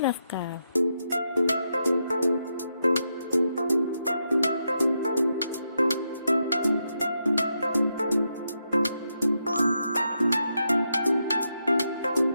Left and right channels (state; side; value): inverted; both; correlation -0.83